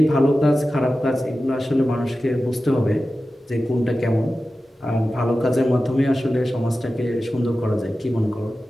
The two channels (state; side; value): normal; both; correlation 0.94